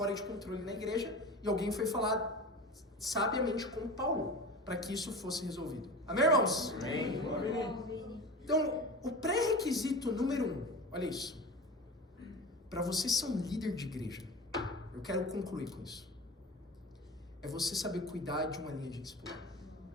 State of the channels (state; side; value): normal; both; correlation 0.32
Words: de controle na igreja, e alguém foi falar sabiamente com Paulo, para que isso fosse resolvido. Amém, irmãos? Amém. Então, o pré-requisito número 1, olha isso. Para você ser um líder de igreja, eu quero concluir com isso. É você saber cuidar de uma linha de discipulado.